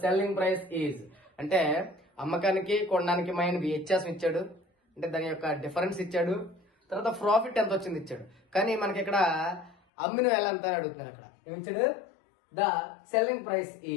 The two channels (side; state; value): right; drops out; at 9.8 s